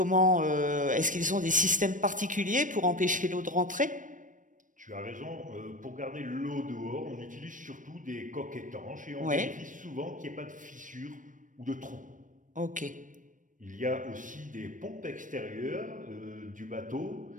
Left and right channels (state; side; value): late; left; 0.38 ms